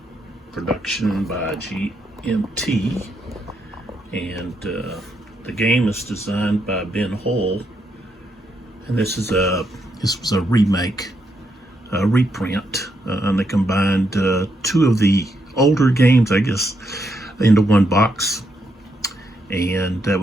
production by GMT, and the game is designed by Ben Hull, and this was a remake, a reprint, and they combined two of the older games, I guess, into one box, and that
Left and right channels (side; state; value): both; normal; correlation 0.79